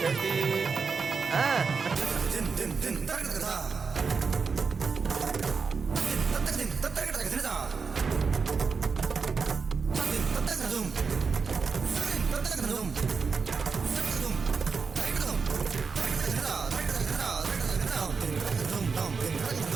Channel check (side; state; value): left; quieter; 5.2 dB